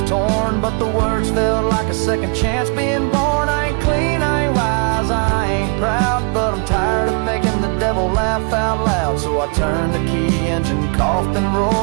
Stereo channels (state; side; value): quieter; left; 34.6 dB